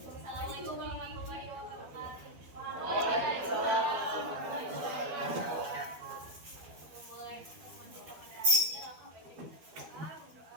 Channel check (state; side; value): late; left; 12 ms